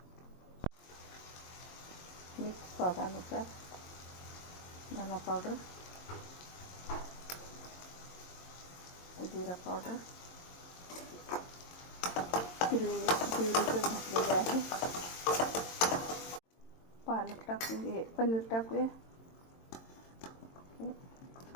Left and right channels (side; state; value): right; late; 22 ms